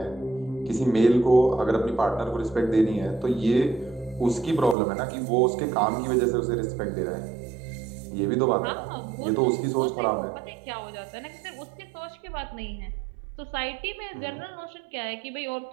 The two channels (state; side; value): drops out; left; at 4.8 s